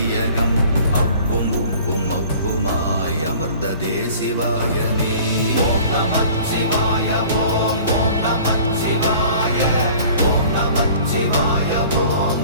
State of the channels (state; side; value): inverted; both; correlation -0.48